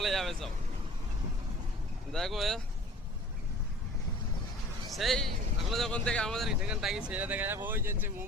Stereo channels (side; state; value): both; normal; correlation 0.46